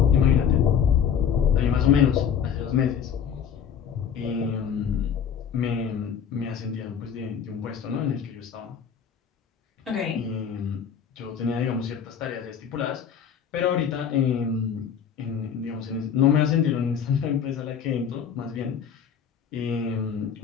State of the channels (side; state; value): right; quieter; 7.8 dB